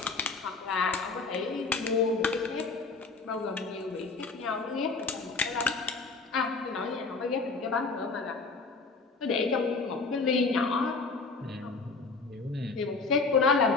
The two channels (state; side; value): quieter; right; 4.1 dB